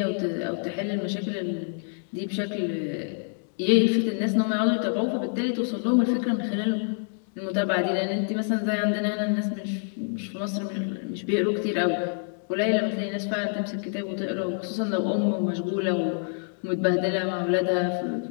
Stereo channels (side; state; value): right; silent; 60 dB below the other